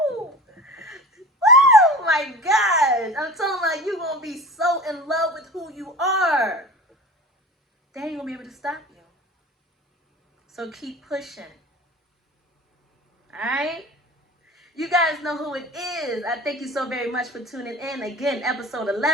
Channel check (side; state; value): both; normal; correlation 0.36